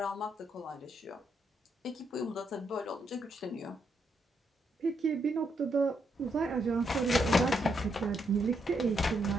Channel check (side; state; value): both; normal; correlation 0.78